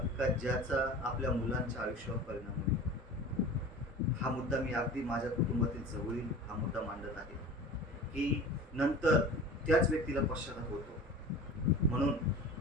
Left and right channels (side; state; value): both; normal; correlation 0.38